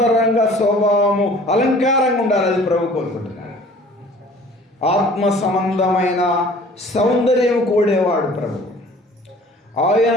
స్వభావము అలంకారంగా ఉండాలి. అది ప్రభు కోరుకుంటున్నాడు. ఆత్మ సంబంధమైన సౌందర్యం కోడేవాడు ప్రభు. ఆయన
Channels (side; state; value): both; normal; correlation 0.50